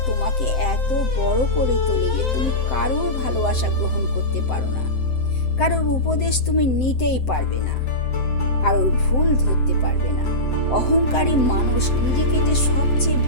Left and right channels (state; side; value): late; right; 7.7 ms